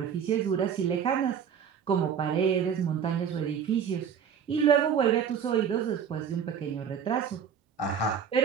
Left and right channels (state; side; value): quieter; left; 7.8 dB